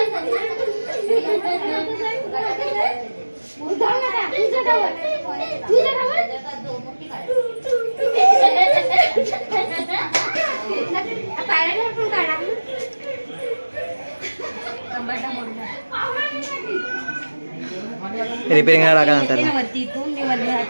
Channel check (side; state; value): both; inverted; correlation -1.00